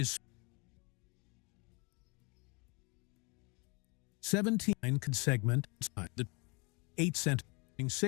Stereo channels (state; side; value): quieter; right; 30.2 dB